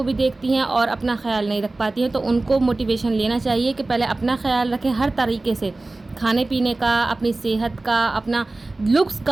भी देखती हैं और अपना ख्याल नहीं रख पाती हैं। तो उनको मोटिवेशन लेना चाहिए कि पहले अपना ख्याल रखें हर तरीके से, खाने पीने का, अपनी सेहत का, अपना लुक्स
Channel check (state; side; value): quieter; left; 3.1 dB